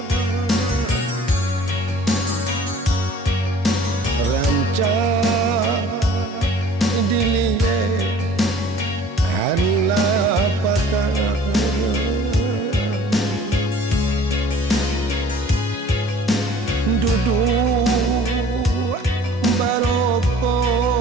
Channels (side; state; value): both; normal; correlation 0.50